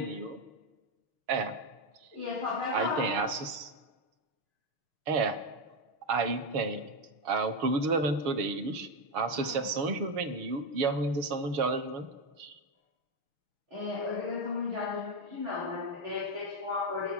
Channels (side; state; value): left; late; 6.4 ms